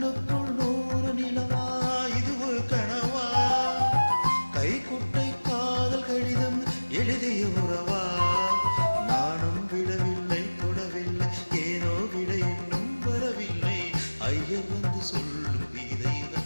100 நிலவா இது ஒரு கனவா கைக்குட்டை காதல் கடிதம் எழுதிய உறவா நானும் விடவில்லை தொடவில்லை ஏனோ விட இன்னும் வரவில்லை ஐயர் வந்து சொல்லும்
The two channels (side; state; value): both; inverted; correlation -1.00